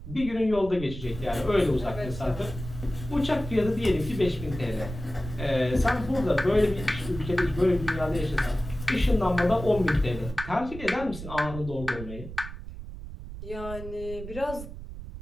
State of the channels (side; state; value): right; noise; rumble, 11 dB below the sound